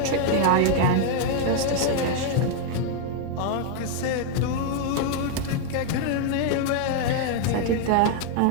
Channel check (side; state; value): both; different; correlation 0.00